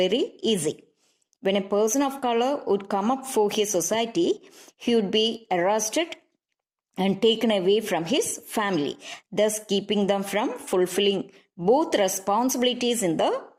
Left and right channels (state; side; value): identical; both; correlation 1.00